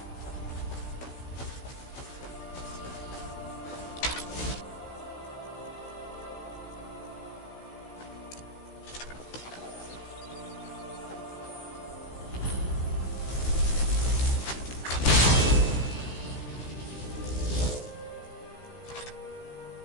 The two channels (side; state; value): right; late; 16 ms